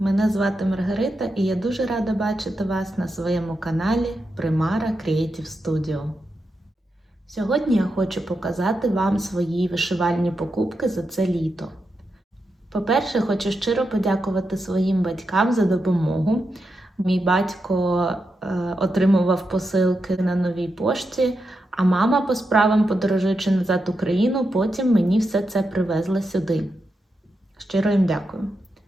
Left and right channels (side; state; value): both; normal; correlation 0.86